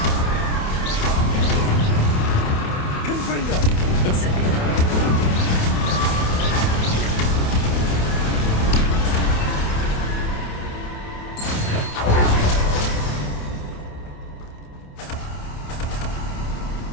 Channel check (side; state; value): right; late; 28 ms